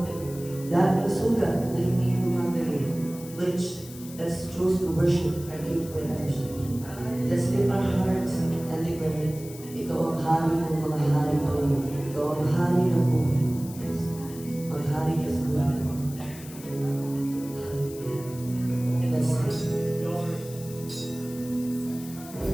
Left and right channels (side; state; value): left; noise; hiss, 17 dB below the sound